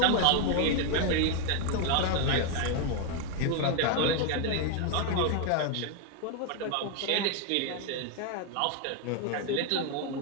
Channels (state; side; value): different; both; correlation 0.01